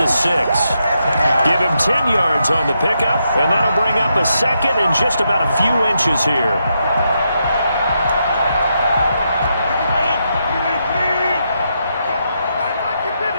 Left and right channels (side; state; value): both; inverted; correlation -0.82